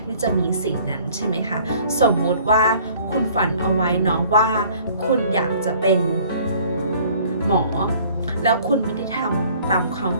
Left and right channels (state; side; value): inverted; both; correlation -0.54